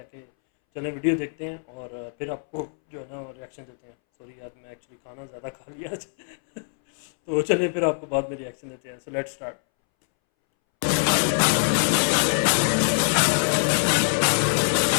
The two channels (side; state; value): right; silent; 62 dB below the other